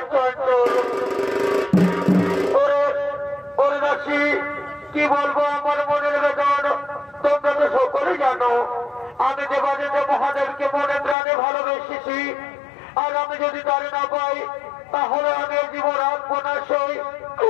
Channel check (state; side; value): drops out; right; at 11.2 s